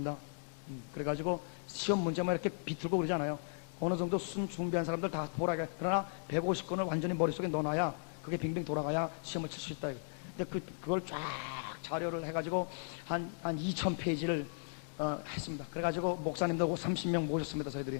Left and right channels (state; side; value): silent; right; digital silence